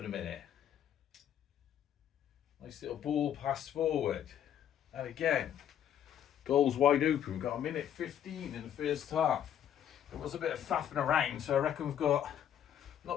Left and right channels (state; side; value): quieter; right; 9.9 dB